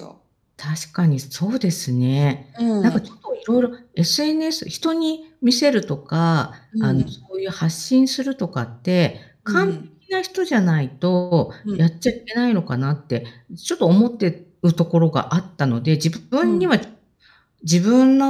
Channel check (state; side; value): identical; both; correlation 1.00